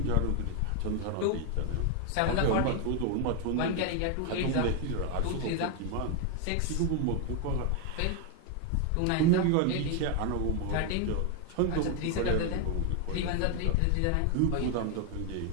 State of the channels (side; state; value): both; different; correlation 0.01